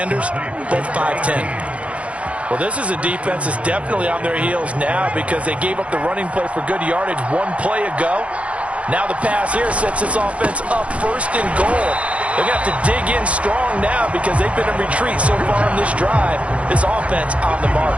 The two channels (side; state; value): left; late; 0.063 ms